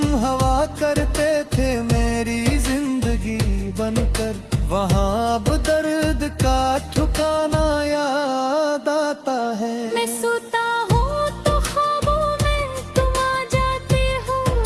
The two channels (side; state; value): both; identical; correlation 1.00